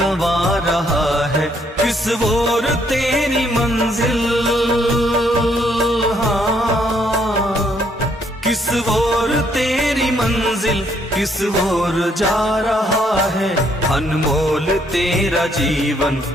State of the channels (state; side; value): normal; both; correlation 0.70